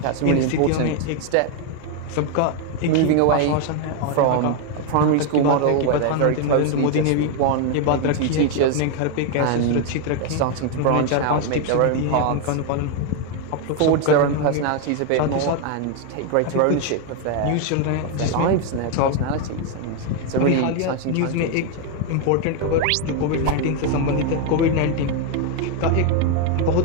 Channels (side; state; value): both; different; correlation 0.01